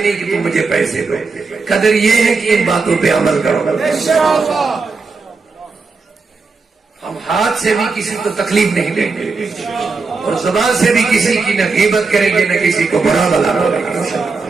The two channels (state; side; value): quieter; left; 4.3 dB